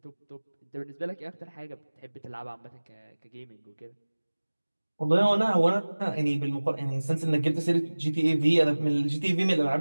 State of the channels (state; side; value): inverted; both; correlation -1.00